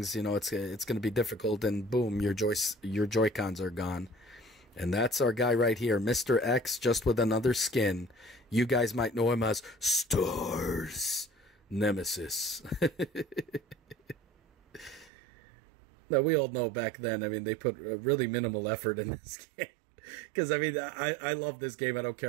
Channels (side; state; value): left; drops out; at 15.1 s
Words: you know, it's going to be difficult. And boom, your Joy-Cons are gone. And that's our guy right here, Mr. X, just with another skin. You guys might know him as Stars Nemesis. Now, we all know back then, I mean, they put really minimal effort in this game. Because, I mean, I love this game. I don't